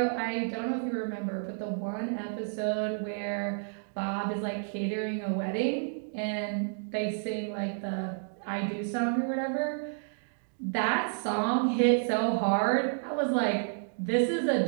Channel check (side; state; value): left; silent; digital silence